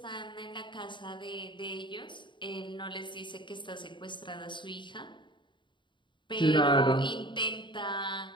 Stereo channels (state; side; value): late; right; 0.23 ms